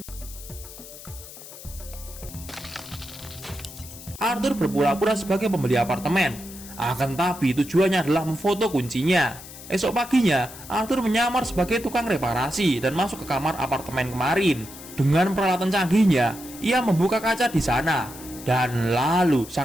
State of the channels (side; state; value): left; noise; hiss, 15 dB below the sound